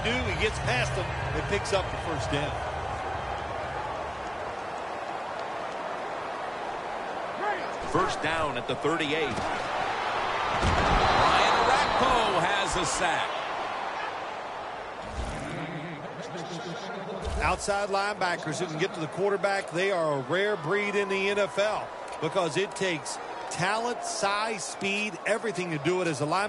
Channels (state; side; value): identical; both; correlation 1.00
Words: do? He gets past them and picks up the first down. First down at the 38. Ryan Rakpo has a sack. Outside linebackers who can get to the quarterback, they are a rare breed in the NFL because it takes talent, size, speed, everything to do it as a